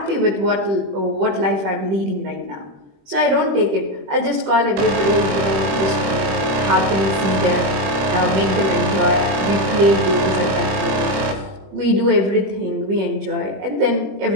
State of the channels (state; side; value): late; left; 20 ms